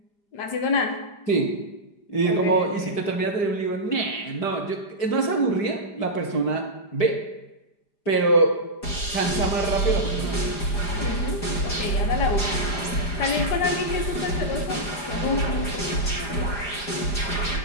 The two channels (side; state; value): right; late; 5.0 ms